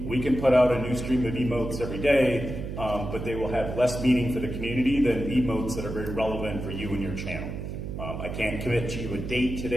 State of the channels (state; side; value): noise; right; hum, 6 dB below the sound